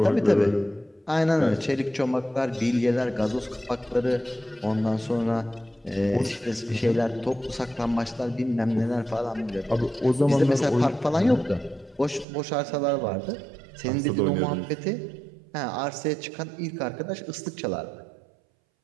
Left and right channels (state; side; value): drops out; left; at 12.2 s